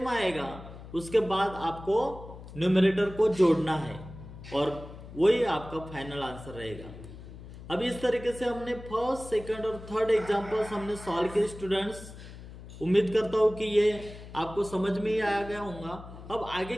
आएगा उसके बाद आपको न्यूमरेटर को जोड़ना है और वही आपका फाइनल आंसर रहेगा। अब इस तरीके से हमने फर्स्ट, सेकंड और थर्ड एग्जांपल्स हमने सॉल्व किए स्टूडेंट्स। उम्मीद करता हूं कि ये आपको समझ में ही आ गया होगा। अब आगे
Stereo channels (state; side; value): noise; left; hum, 15 dB below the sound